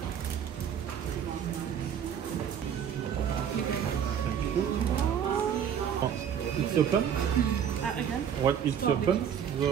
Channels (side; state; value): left; quieter; 8.6 dB